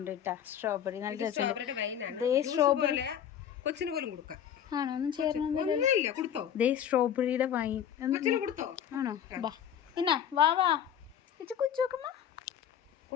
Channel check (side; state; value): right; quieter; 9.4 dB